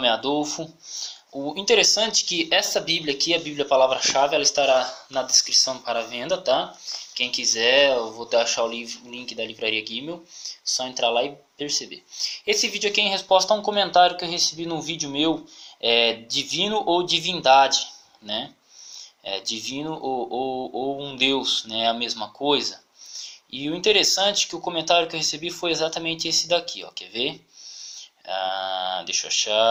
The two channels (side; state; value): both; identical; correlation 1.00